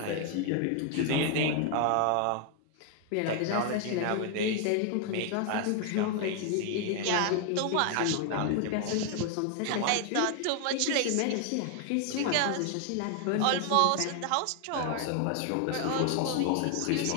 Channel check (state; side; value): different; both; correlation 0.00